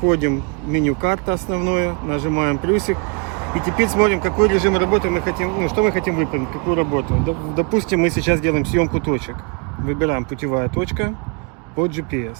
в меню карта основное, нажимаем плюсик. И теперь смотрим, какой режим работы мы хотим, что мы хотим выполнить, какую работу. Допустим, мы сейчас делаем съемку точек. Выбираем путевая точка под GPS.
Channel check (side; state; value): left; quieter; 34.2 dB